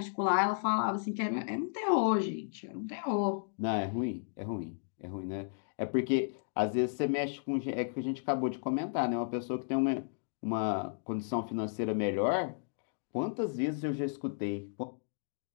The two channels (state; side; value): silent; right; digital silence